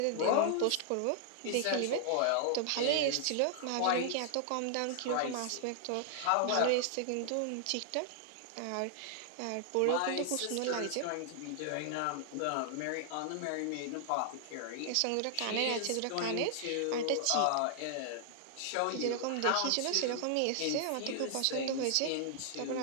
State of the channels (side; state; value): both; different; correlation 0.00